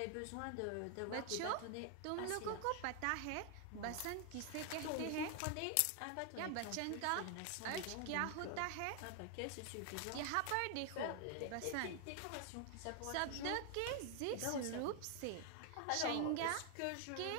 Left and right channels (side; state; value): both; different; correlation 0.00